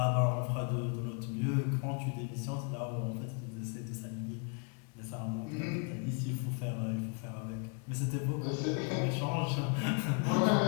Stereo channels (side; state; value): right; quieter; 37.5 dB